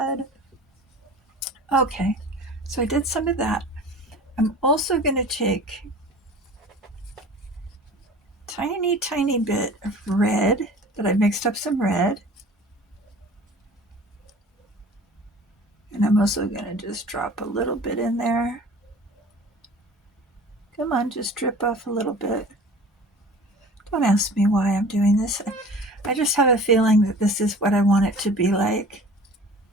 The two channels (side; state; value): both; normal; correlation 0.43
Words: Okay, so I did some of that. I'm also going to take tiny, tiny bit of red that I mixed up some red. And I'm also going to just drop a little bit in there. Come on, just drip off a little bit. Don't ask me why I'm doing this. I just have a feeling that this is what I want it to be like.